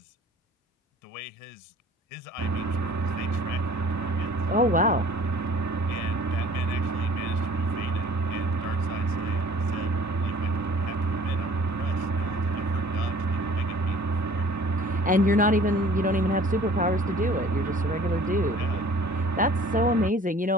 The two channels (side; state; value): both; normal; correlation 0.50